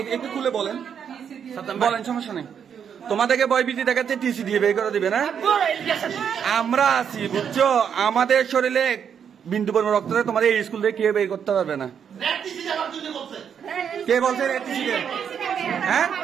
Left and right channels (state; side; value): quieter; left; 7.8 dB